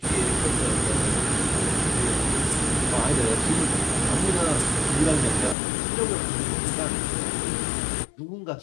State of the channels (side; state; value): right; drops out; at 5.6 s